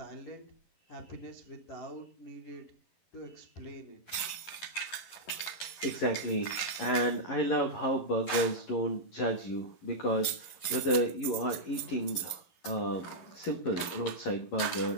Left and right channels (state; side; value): late; right; 11 ms